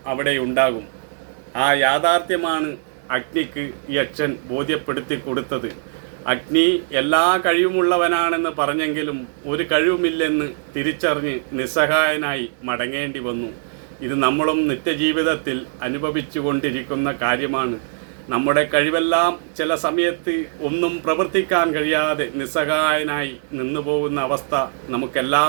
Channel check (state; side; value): silent; left; digital silence